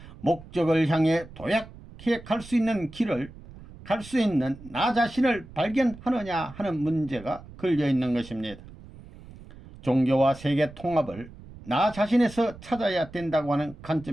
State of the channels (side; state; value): right; noise; rumble, 18 dB below the sound